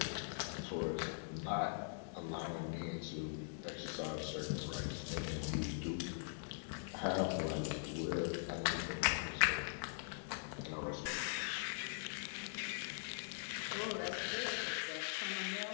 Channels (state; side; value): silent; right; digital silence